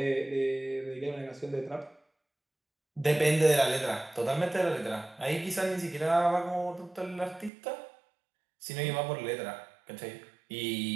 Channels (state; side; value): drops out; left; at 7.5 s